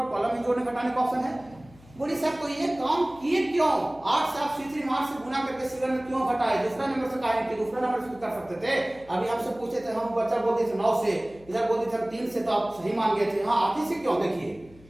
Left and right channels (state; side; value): noise; left; hum, 24 dB below the sound